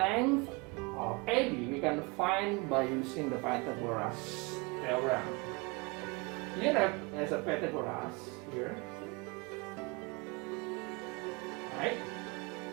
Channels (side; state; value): left; quieter; 27.6 dB